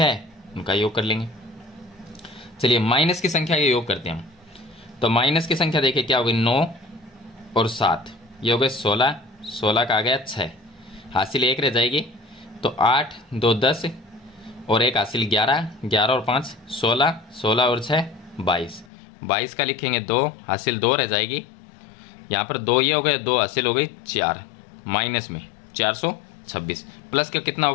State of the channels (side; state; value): right; drops out; at 18.9 s